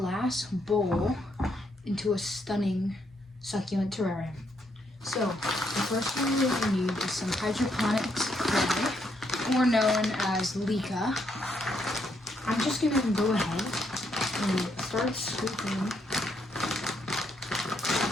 bowl into a stunning succulent terrarium. So, the first thing you're going to need is some hydroponics clay, or known as leca. I'm just going to go ahead and start scooping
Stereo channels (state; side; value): normal; both; correlation 0.75